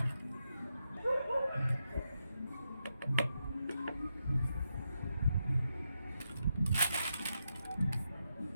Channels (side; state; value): both; inverted; correlation -0.84